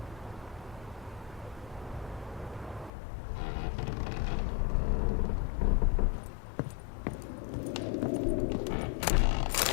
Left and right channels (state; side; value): drops out; right; at 2.9 s